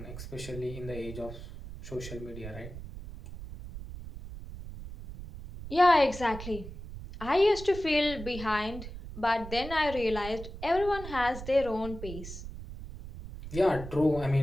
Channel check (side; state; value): right; noise; rumble, 11 dB below the sound